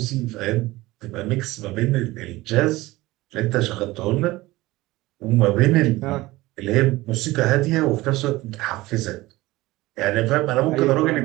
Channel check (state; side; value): quieter; left; 19.1 dB